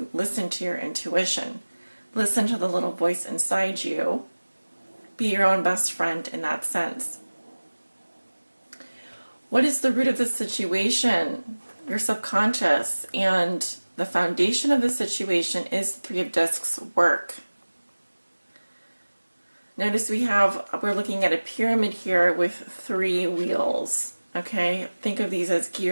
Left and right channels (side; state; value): both; inverted; correlation -1.00